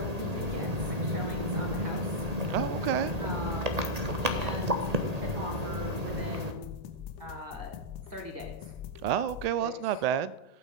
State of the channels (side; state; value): left; late; 1.8 ms